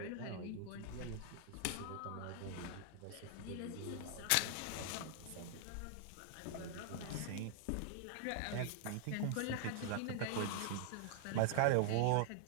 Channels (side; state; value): both; different; correlation 0.00